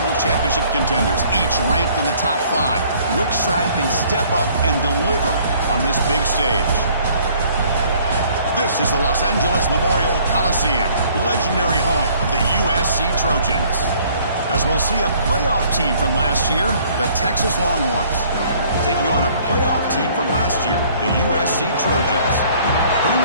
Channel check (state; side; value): inverted; both; correlation -0.58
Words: championship contenders, each ranked in the top 5. Which side can step up and deliver on this big stage? This is the Los Angeles Memorial Coliseum, legendary home of the USC Trojans. As we'll see a playoff team from last year, the Texas Longhorns, taking on a playoff team from last year, the USC Trojans.